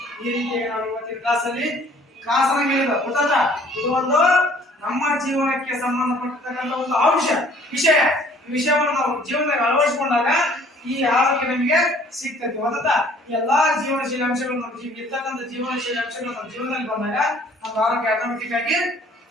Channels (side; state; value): both; normal; correlation 0.56